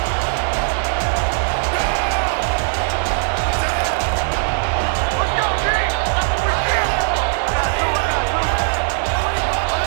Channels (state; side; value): silent; left; 66 dB below the other